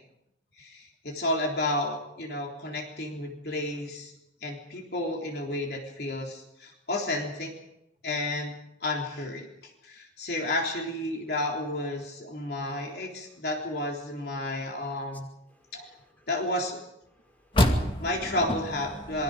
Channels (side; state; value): both; normal; correlation 0.15